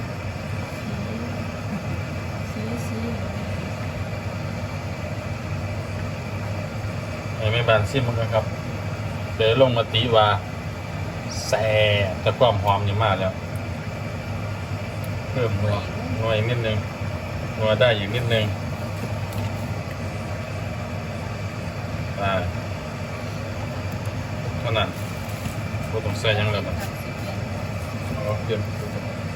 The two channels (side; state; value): both; identical; correlation 1.00